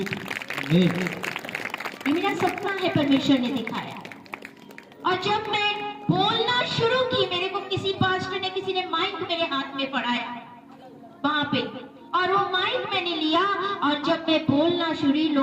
थी। ये मेरा सपना है, परमेश्वर ने दिखाया। और जब मैं बोलना शुरू की, मेरे को किसी पास्टर ने, किसी ने माइक मेरे हाथ में पढ़ाया वहां पे, और वो माइक मैंने लिया, और जब मैं बोलना शुरू,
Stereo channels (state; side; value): identical; both; correlation 1.00